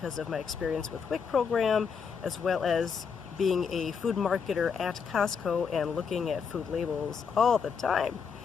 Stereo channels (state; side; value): quieter; right; 6.2 dB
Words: of my experience with WIC program, as well as being a food marketer at Costco and looking at food labels all the time.